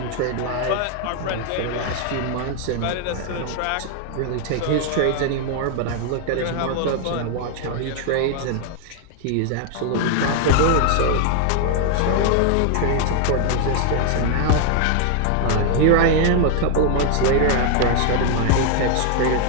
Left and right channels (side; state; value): both; different; correlation 0.00